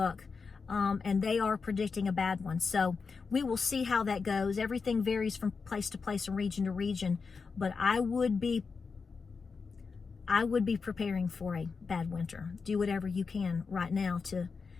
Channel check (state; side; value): quieter; right; 5.0 dB